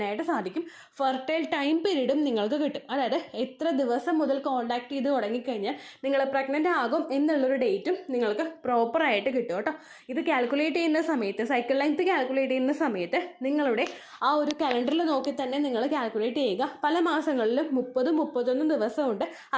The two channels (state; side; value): identical; both; correlation 1.00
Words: സാധിക്കും. ഫെർട്ടൈൽ ടൈം പീരീഡും നിങ്ങൾക്ക് കിട്ടും. അതായത് എത്ര ദിവസം മുതൽ കോൺടാക്ട് ചെയ്ത് തുടങ്ങിക്കഴിഞ്ഞാൽ നിങ്ങൾ പ്രഗ്നൻ്റ് ആകും എന്നുള്ളൊരു ഡേറ്റും നിങ്ങൾക്ക് പ്രോപ്പറായിട്ട് കിട്ടും കേട്ടോ. ഇത് കാൽക്കുലേറ്റ് ചെയ്യുന്ന സമയത്ത് സൈക്കിൾ ലെങ്ത് കാൽക്കുലേറ്റ് ചെയ്യുന്ന സമയത്ത് നിങ്ങളുടെ ആ ഒരു കലണ്ടറിൽ നോക്കി തന്നെ നിങ്ങൾ കാൽക്കുലേറ്റ് ചെയ്യുക. പല മാസങ്ങളിലും 30-31 ദിവസമുണ്ട്,